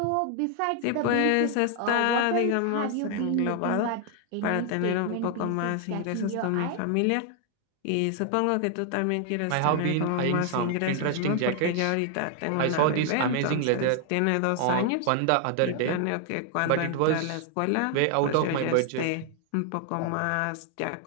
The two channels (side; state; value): both; different; correlation 0.00